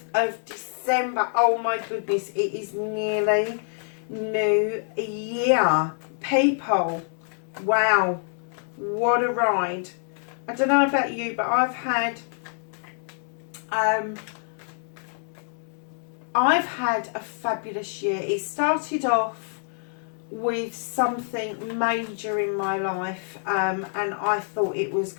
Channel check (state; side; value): silent; right; 58 dB below the other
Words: of December. Oh my goodness, it is nearly New Year. People, wow, what a ride. I don't know about you, but I've had a fabulous year. It started off with something major in my life, and I thought it was